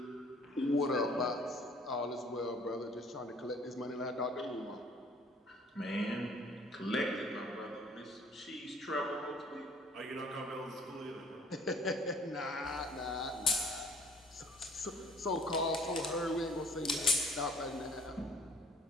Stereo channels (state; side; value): normal; both; correlation 0.55